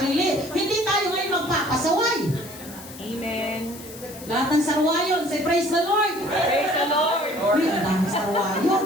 Hindi tayo ngayon magpapasaway. Amen. Lahat ng sarwayon, say praise the Lord. Praise the Lord. Uy, ang daming sarwayon.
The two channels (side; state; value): left; noise; hiss, 16 dB below the sound